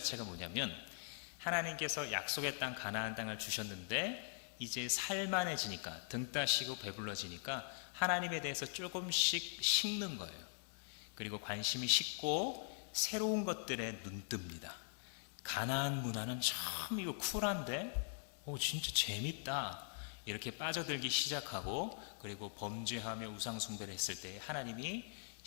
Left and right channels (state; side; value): silent; right; digital silence